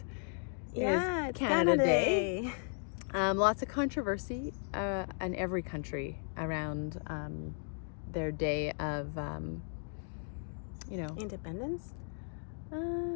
Canada Day. Lots of controversy in every country around their day of Independence?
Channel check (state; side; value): silent; right; 54 dB below the other